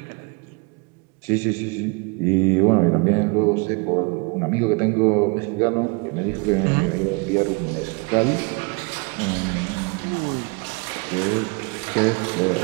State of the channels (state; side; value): quieter; left; 30.9 dB